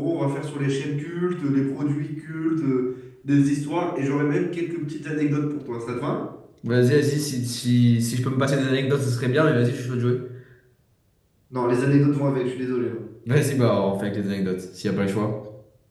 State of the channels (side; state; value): both; identical; correlation 1.00